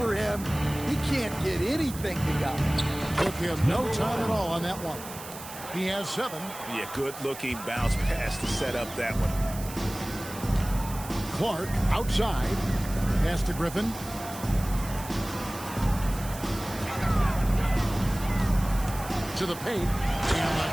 him. He can't get anything to go. Took him no time at all on that one. He has 7. Yeah, good-looking bounce pass to set up that one. Clark outside. Pass to Griffin. To the paint.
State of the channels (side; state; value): right; noise; hiss, 13 dB below the sound